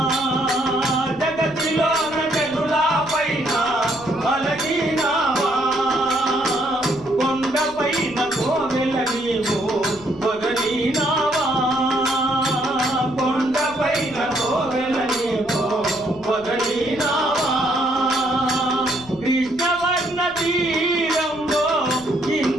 జగతిలోన జనుల పైన అలగినావా కొండపైన కోవెల నీవు వదలినావా కొండపైన కోవెల నీవు వదలినావా కృష్ణవర్ణ తీరంలో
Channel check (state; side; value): noise; left; rumble, 22 dB below the sound